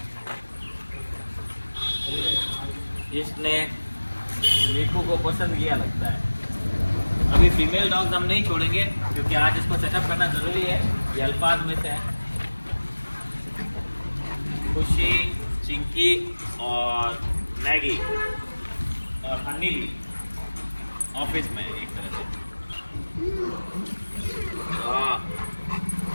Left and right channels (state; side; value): inverted; both; correlation -1.00